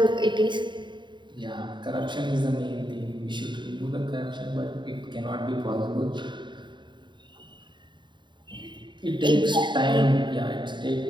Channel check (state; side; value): late; left; 0.23 ms